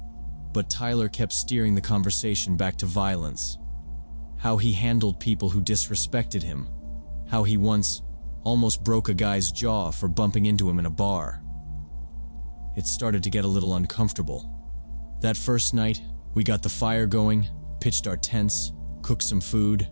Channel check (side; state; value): both; inverted; correlation -1.00